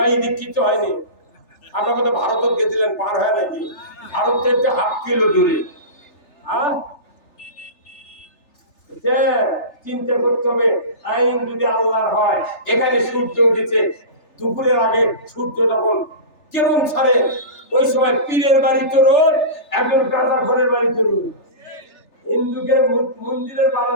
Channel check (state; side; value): late; right; 3.4 ms